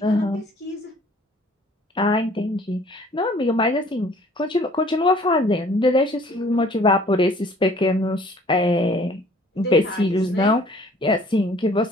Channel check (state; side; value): normal; both; correlation 0.55